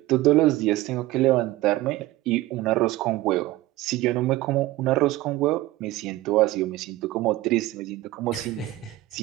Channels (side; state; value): left; quieter; 17.3 dB